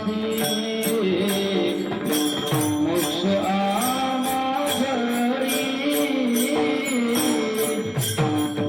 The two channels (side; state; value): both; identical; correlation 1.00